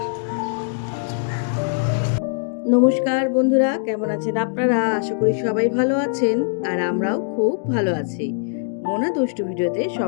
নমস্কার বন্ধুরা, কেমন আছেন আপনারা? আশা করি সবাই ভালো আছেন, আর আমরাও খুব ভালো আছি। মোনা দুষ্টু ভিডিওতে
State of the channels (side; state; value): right; silent; digital silence